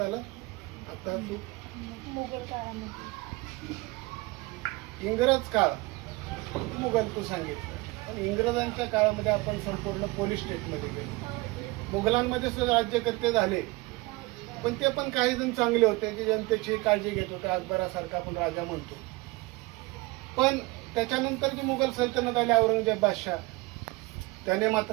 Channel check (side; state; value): left; quieter; 23.2 dB